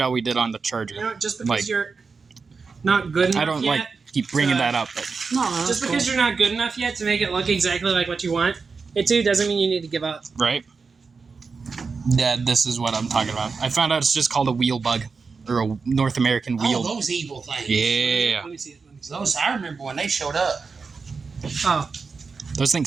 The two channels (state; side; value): quieter; left; 4.8 dB